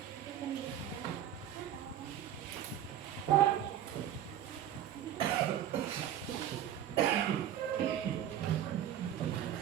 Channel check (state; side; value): quieter; left; 10.8 dB